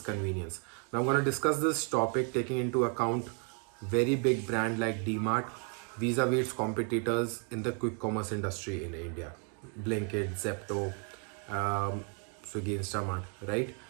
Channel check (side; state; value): left; quieter; 39.8 dB